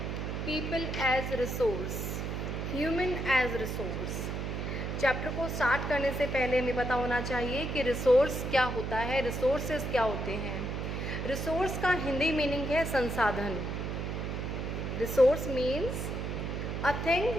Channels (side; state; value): right; noise; hum, 3 dB below the sound